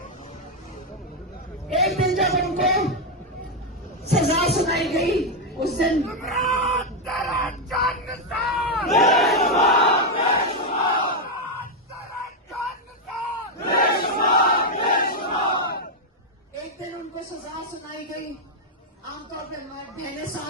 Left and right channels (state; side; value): normal; both; correlation 0.02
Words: एक दिन जब उनको सजा सुनाई गई, उस दिन एक दिन उनको सजा सुनाई गई। आमतौर पर बहनें